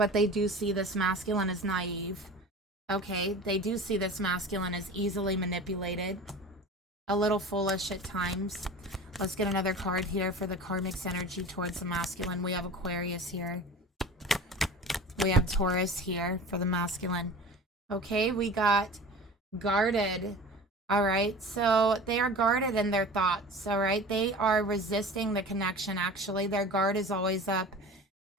they do see this masculine as naive. Okay, they do see this masculine as easily manipulated, a little foolish at times. Let's get another card here for the karmic's energy towards the masculine. We have Aquarius here. We have Taurus here for the masculine. Okay, we got guarded. All right, so they are guarded in their thoughts. All right, they are resisting the connection. Actually, their guard is always up.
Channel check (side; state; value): both; normal; correlation 0.37